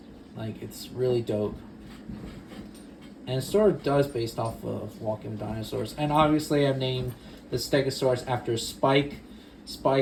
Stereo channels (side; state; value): both; identical; correlation 1.00